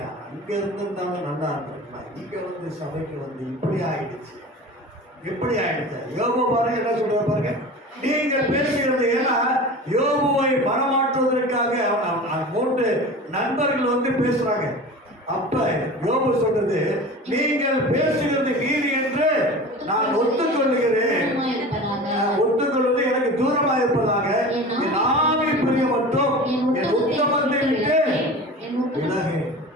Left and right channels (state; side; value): normal; both; correlation 0.35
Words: அங்க இருந்திருந்தாலும் நல்லா இருந்திருக்கலாம், இங்க வந்து சபைக்கு வந்து இப்படி ஆயிடுச்சு. யோபு பாருங்க என்ன சொல்ற பாருங்க. நீங்கள் பேசுகிறது ஏன்னா யோபுவை மனமாற்றுவதற்காக 3 நண்பர்கள் வந்து பேசுறாங்க. அப்ப யோபு சொல்றது, நீங்கள் பேசுகிறது நீதி என்று நான் ஒத்துக்கொள்ளுகிறேன். ஒத்துக்கொள்வது எனக்கு தூரமாக இருப்பதாக என் ஆவி பிரிய மட்டும் என் உத்தமத்தை விட்டு விலகு.